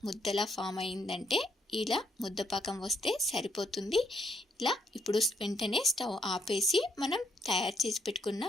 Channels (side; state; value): both; normal; correlation 0.73